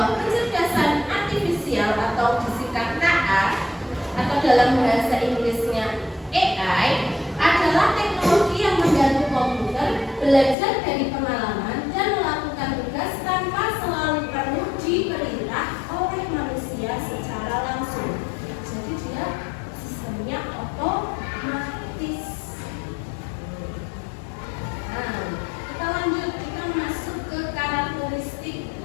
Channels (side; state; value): right; drops out; at 10.6 s